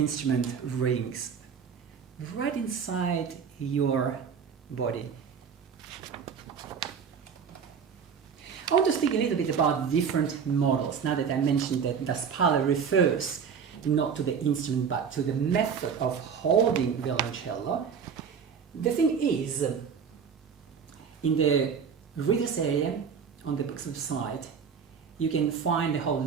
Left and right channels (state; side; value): quieter; left; 6.7 dB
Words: rings right inside your body. I want to speak a little bit about different models, now that I mentioned that the spalla refers not to the instrument but to the method of holding violoncello. The thing is, in the readers area on the book's website, you can find a whole